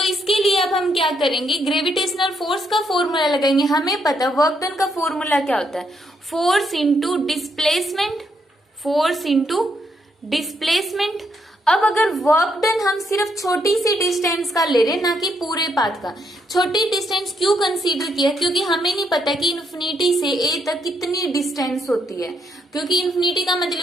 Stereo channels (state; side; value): normal; both; correlation 0.76